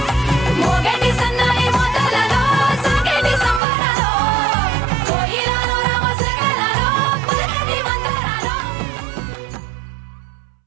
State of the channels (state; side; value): drops out; left; at 3.6 s